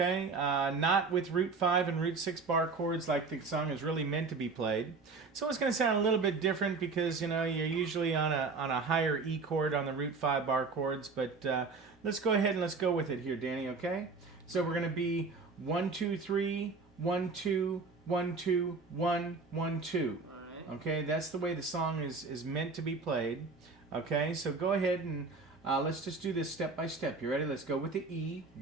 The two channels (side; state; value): left; quieter; 4.3 dB